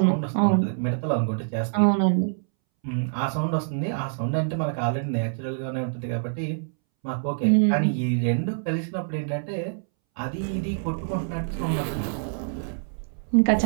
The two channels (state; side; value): silent; left; 61 dB below the other